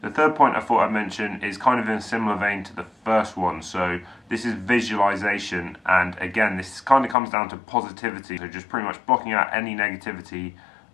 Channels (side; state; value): right; drops out; at 7.2 s